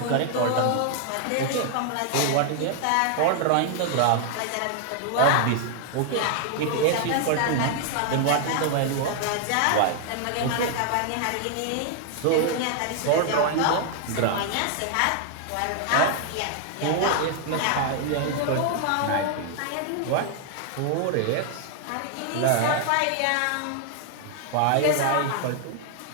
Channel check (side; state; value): both; different; correlation 0.00